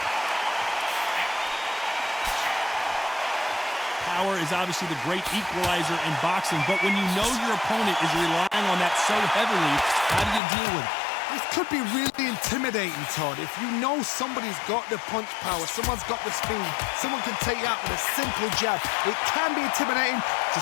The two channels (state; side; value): drops out; right; at 10.4 s